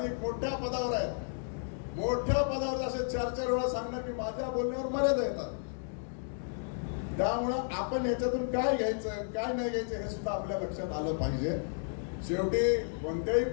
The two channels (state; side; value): silent; right; digital silence